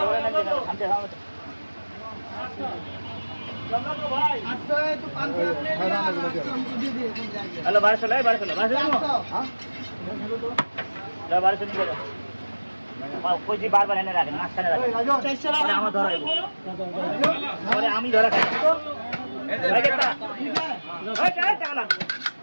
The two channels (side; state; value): both; inverted; correlation -1.00